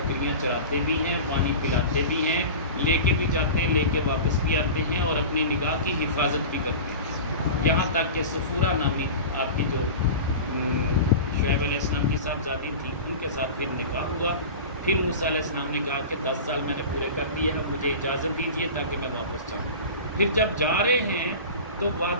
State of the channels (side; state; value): both; inverted; correlation -0.32